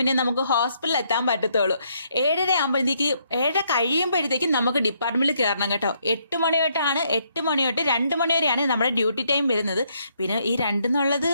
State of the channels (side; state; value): both; inverted; correlation -0.72